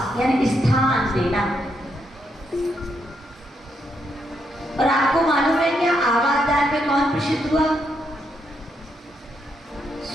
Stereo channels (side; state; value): both; normal; correlation 0.79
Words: यानी स्थान देना। और आपको मालूम है क्या आवास दान में कौन प्रसिद्ध हुआ?